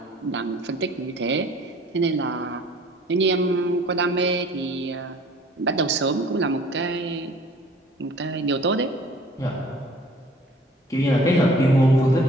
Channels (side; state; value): both; normal; correlation 0.51